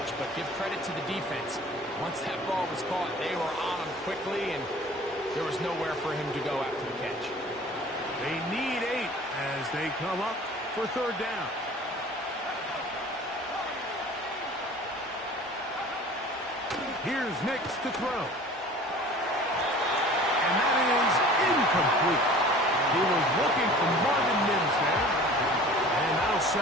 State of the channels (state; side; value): normal; both; correlation 0.45